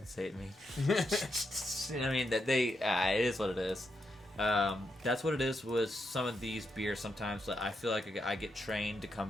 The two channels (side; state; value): both; normal; correlation 0.83